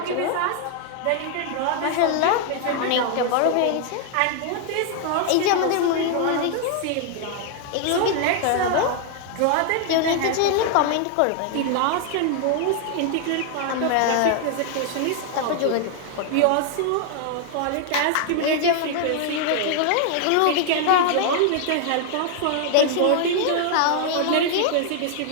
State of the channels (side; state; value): both; different; correlation 0.00